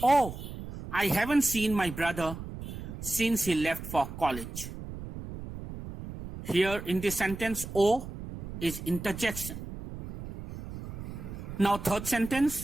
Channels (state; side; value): noise; right; rumble, 10 dB below the sound